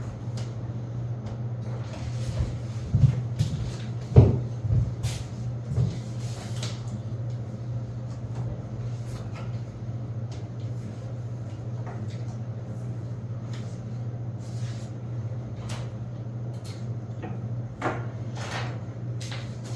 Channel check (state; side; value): identical; both; correlation 1.00